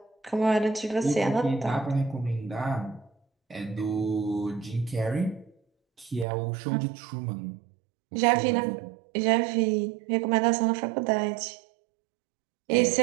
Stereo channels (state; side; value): drops out; left; at 6.2 s